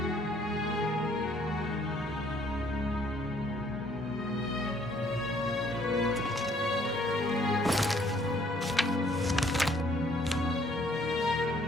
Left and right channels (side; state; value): both; normal; correlation 0.63